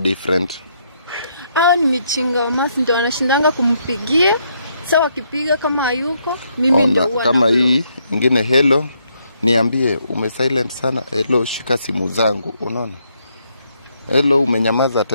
Ni michinga wa Masi ndio anashindanga kumpigia. Sawa kipiga kama hayuko, mimi ndio kama hii ingine, hello, niambie umesilent sana, hello shika simu zangu, unaona? Hello umenyamaza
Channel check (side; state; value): both; inverted; correlation -0.74